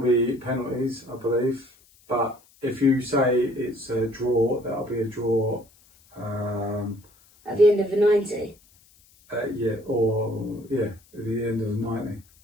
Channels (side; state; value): left; noise; hiss, 30 dB below the sound